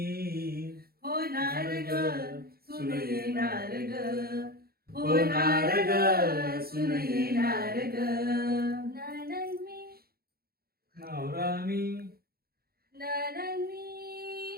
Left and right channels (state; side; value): late; left; 0.44 ms